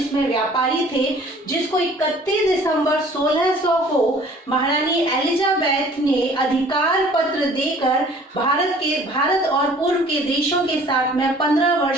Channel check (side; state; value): both; normal; correlation 0.52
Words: व्यापारी थे, जिसको 31 दिसंबर 1600 को महारानी एलिजाबेथ ने अधिकार पत्र देकर भारत और पूर्व के देशों के साथ में 15